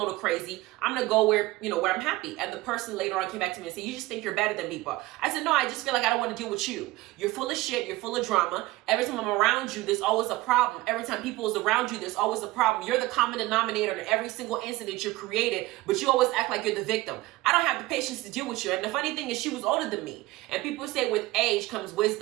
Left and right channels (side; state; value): left; quieter; 19.0 dB